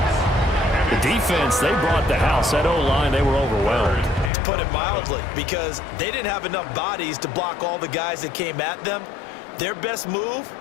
The defense, they brought the house. That O-line, they were overwhelmed. To put it mildly, because they didn't have enough bodies to block all the guys that came at them. Their best move,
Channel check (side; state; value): right; drops out; at 4.3 s